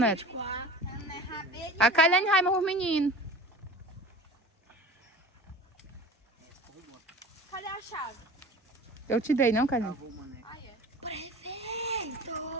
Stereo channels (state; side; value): normal; both; correlation 0.37